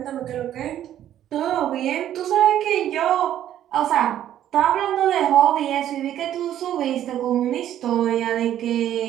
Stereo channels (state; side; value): quieter; left; 11.5 dB